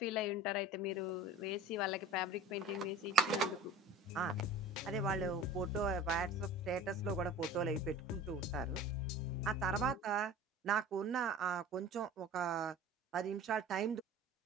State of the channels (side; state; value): both; normal; correlation 0.39